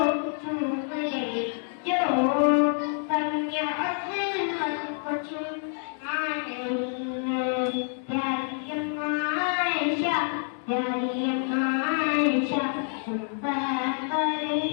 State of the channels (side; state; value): right; silent; 60 dB below the other